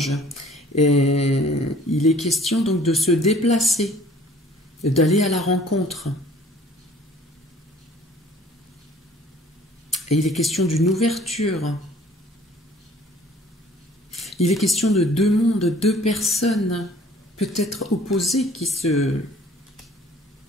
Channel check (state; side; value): normal; both; correlation 0.54